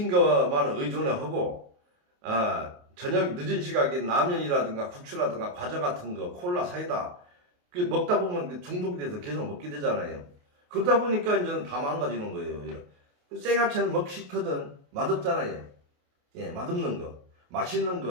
것만 의존하고 저녁 늦은 시각에 라면이라든가 국수라든가 과자 같은 거, 콜라, 사이다 그게 먹다 보면 중독이 돼서 계속 먹게 되잖아요. 그러다 보니까 이제는 다 망가지는 거예요. 생야채는 먹기 싫거든. 맛없잖아요. 예, 맛없는 거, 맛있는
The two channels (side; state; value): left; late; 28 ms